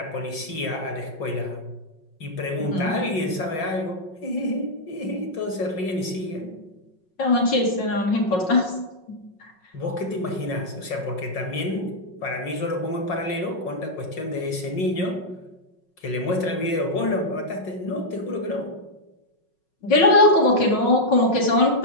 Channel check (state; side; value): late; right; 5.4 ms